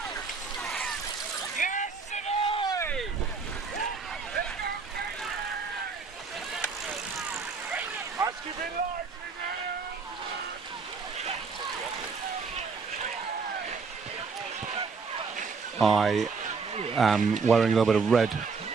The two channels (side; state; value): left; quieter; 5.0 dB